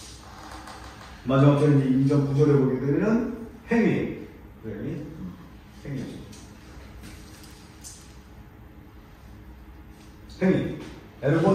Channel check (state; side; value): identical; both; correlation 1.00